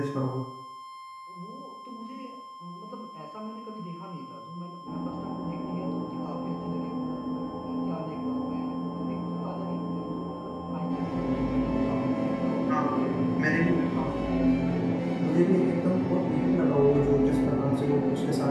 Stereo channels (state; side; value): identical; both; correlation 1.00